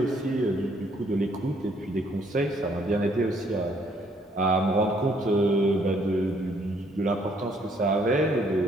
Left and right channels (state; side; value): normal; both; correlation 0.66